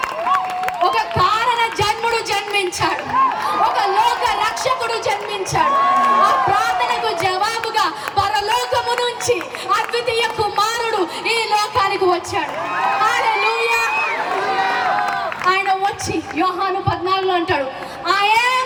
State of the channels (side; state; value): both; identical; correlation 1.00